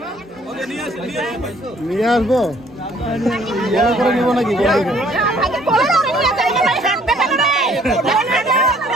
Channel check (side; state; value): both; normal; correlation 0.60